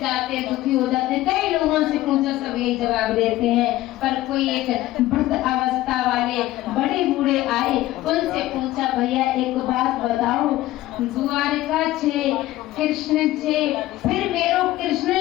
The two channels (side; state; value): right; quieter; 16.1 dB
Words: जाते, दुखी हो जाते। कई लोगों से पूछो सब यही जवाब देते हैं, पर कोई एक वृद्ध अवस्था वाले बड़े बूढ़े आए, उनसे पूछा, भैया एक बात बताओ, द्वारका 6, कृष्ण 6, फिर मेरो कृष्ण